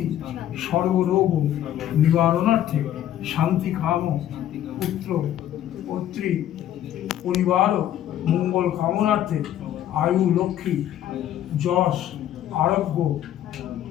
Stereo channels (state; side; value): quieter; right; 11.7 dB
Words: সর্বরোগ নিবারণার্থে শান্তি কাম পুত্র পত্রী পরিবার মঙ্গল কামনার্থে আয়ু লক্ষ্মী যশ আরোগ্য